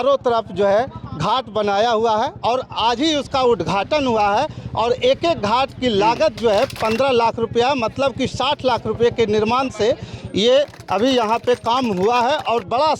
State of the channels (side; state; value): both; identical; correlation 1.00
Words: तरफ जो है घाट बनाया हुआ है और आज ही उसका उद्घाटन हुआ है। और एक एक घाट की लागत जो है 15 लाख रुपया, मतलब कि 60 लाख रुपये के निर्माण से ये अभी यहाँ पे काम हुआ है। और बड़ा